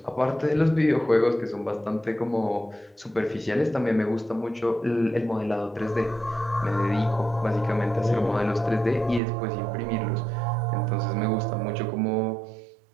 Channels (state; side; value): drops out; left; at 9.2 s